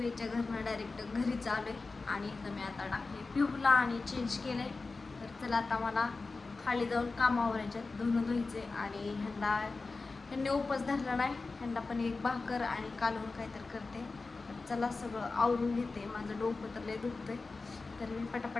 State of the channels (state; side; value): quieter; right; 3.8 dB